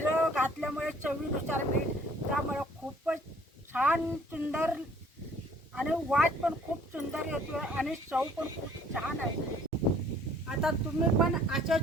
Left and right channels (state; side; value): normal; both; correlation 0.57